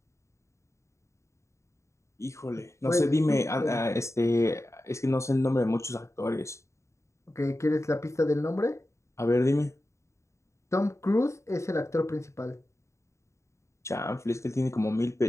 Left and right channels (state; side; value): late; right; 0.14 ms